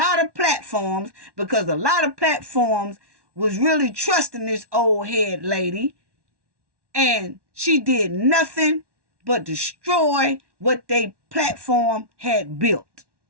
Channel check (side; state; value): left; late; 1.1 ms